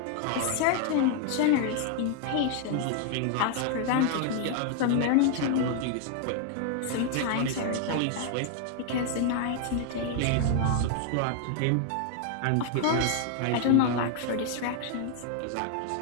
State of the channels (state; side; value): different; both; correlation 0.00